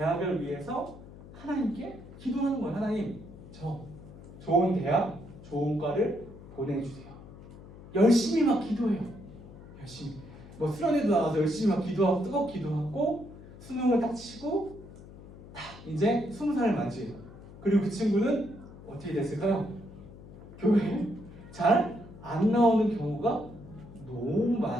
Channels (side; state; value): left; noise; hum, 17 dB below the sound